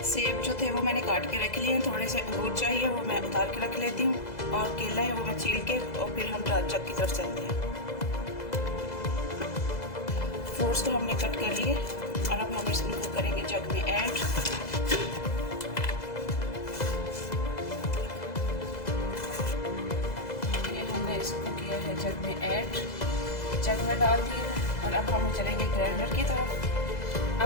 सेब जो थे वो मैंने काट के रख लिए हैं। थोड़े से अंगूर चाहिए, वो मैं उतार के रख लेती हूँ। और केला है वो मैं छील के और फिर हम जग की तरफ चलते हैं। फ्रूट्स तो हमने कट कर लिए और अब हम इसको करेंगे जग में ऐड। इसको किया है जग में ऐड, जग में डाल दिए हैं और अब हम चलेंगे ग्राइंडर की तरफ।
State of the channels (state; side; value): late; right; 2.0 ms